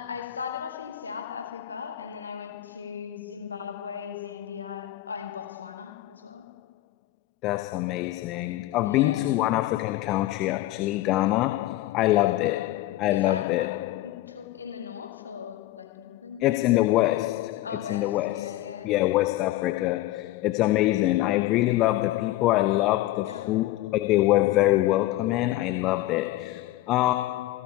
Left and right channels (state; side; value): quieter; right; 15.8 dB